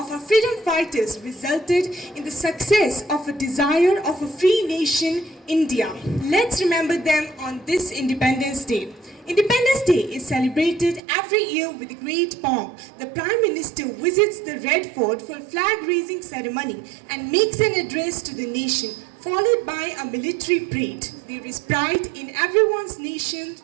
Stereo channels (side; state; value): left; drops out; at 11.0 s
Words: our freedom fighters resulted in the success of a desire of a free nation, India. Let's remember them on this Independence Day. Independence Day is celebrated every year with great pomp. The Prime Minister visits the Red Fort for flag raising ceremony and makes an address to the nation. followed by a military parade. There is pride in everyone's nation